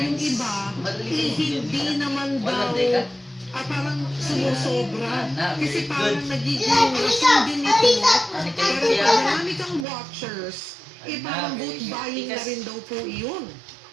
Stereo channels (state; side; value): drops out; left; at 9.9 s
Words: iba hindi naman daw parang sumusobra kasi parang nagiging rason din ito pero pag marami kang watchers parang vote buying na rin daw po iyon.